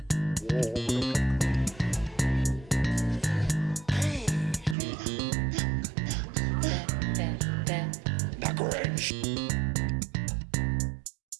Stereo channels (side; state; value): left; drops out; at 4.8 s